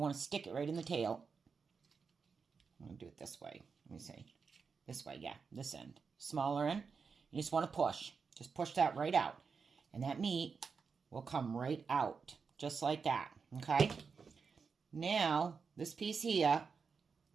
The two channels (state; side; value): quieter; left; 5.4 dB